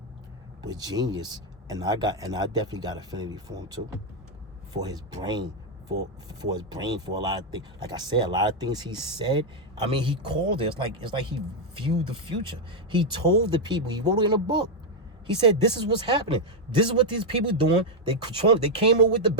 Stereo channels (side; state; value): both; normal; correlation 0.00